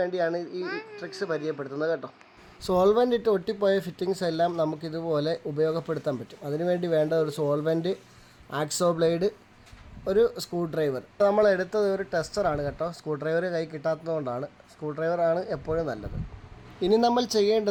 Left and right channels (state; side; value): identical; both; correlation 1.00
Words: ഈ ട്രിക്സ് പരിചയപ്പെടുത്തുന്നത് കേട്ടോ. സോൾവെൻ്റ് ഇട്ട് ഒട്ടിപ്പോയ ഫിറ്റിങ്സ് എല്ലാം നമുക്കിതുപോലെ ഉപയോഗപ്പെടുത്താൻ പറ്റും. അതിനുവേണ്ടി വേണ്ട ഒരു സോൾവെൻറ്റ്, ആക്സോ ബ്ലേഡ്, ഒരു സ്ക്രൂ ഡ്രൈവർ. നമ്മൾ എടുത്തത് ഒരു ടെസ്റ്ററാണ് കേട്ടോ. സ്ക്രൂ ഡ്രൈവർ കൈ കിട്ടാത്തതുകൊണ്ടാണ്. സ്ക്രൂ ഡ്രൈവറാണ് എപ്പോഴും നല്ലത്. ഇനി നമ്മൾ